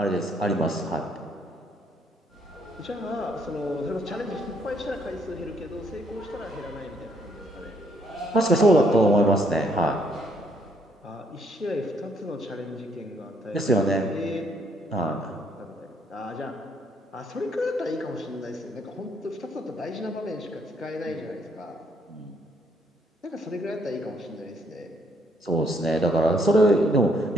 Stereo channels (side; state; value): both; normal; correlation 0.69